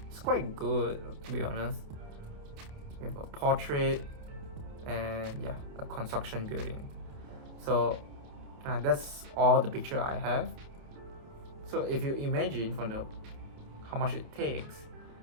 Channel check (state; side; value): late; left; 28 ms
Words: It's quite good, to be honest. We have a portrait, and yeah, a construction building. So that's all the picture I have. So if you imagine from the how much it takes